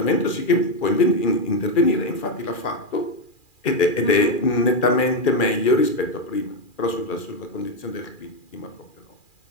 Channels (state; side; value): late; right; 2.4 ms